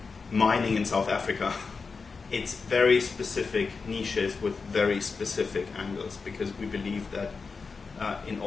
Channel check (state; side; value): quieter; right; 4.8 dB